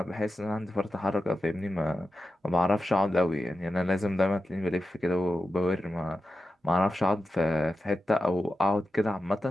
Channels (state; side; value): normal; both; correlation 0.92